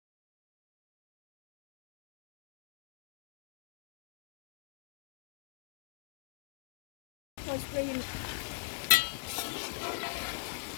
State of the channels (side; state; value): right; silent; digital silence